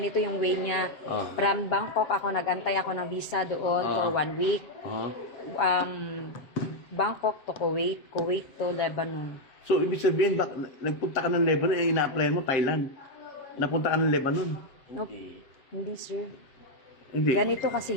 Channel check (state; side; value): late; right; 7.7 ms